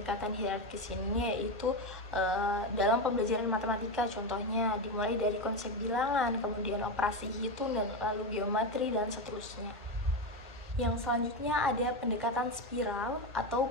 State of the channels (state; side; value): normal; both; correlation 0.14